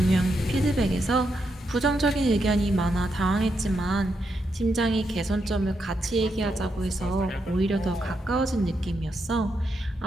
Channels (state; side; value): normal; both; correlation 0.82